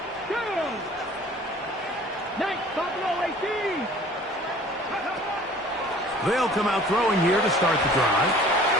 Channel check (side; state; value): both; normal; correlation 0.49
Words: Down. Nice, Buffalo 18. They'll come out throwing here to start the drive.